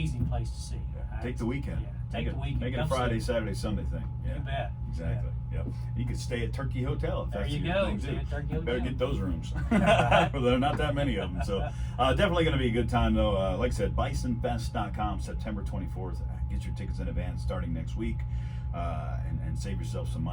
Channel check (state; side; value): identical; both; correlation 1.00